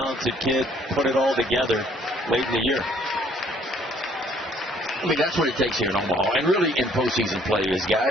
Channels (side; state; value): both; normal; correlation 0.61